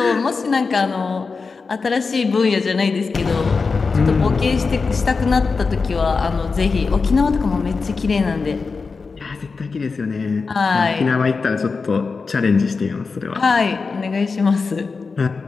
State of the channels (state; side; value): quieter; right; 4.6 dB